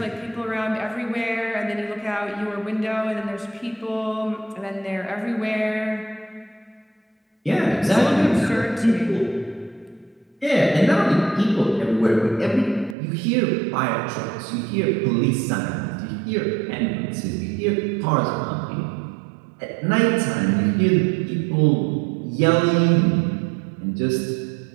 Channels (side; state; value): left; drops out; at 13.0 s